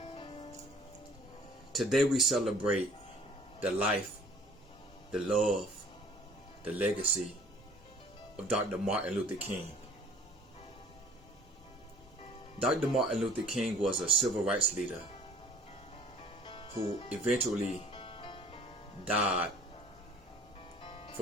Today we celebrate the life, the love, the legacy of Dr. Martin Luther King. Dr. Martin Luther King was a civil rights leader who eventually died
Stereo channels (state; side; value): normal; both; correlation 0.52